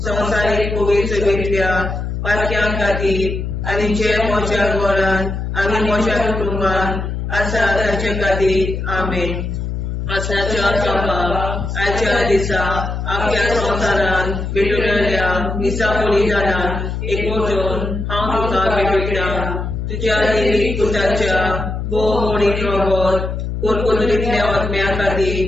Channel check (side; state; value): left; noise; hum, 4 dB below the sound